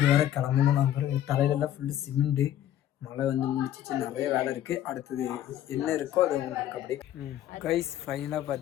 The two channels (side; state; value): right; quieter; 11.6 dB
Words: வேறு கிளம்பணும். நம்ம தலையிலெல்லாம் ஃபுல்லு சிமெண்ட்டு. மழை வந்து முடிச்சிச்சு, நிறைய வேலை இருக்குது. அடுத்தது என்ன இருக்கோ அது உங்களுக்கு அப்படியே கைஸ். ஃபைனலாக